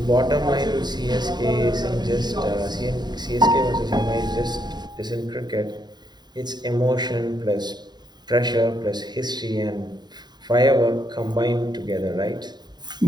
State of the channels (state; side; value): late; left; 0.20 ms